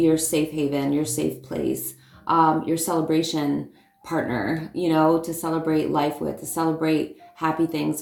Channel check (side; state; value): both; identical; correlation 1.00